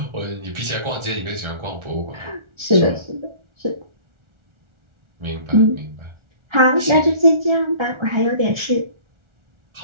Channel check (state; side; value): late; left; 1.4 ms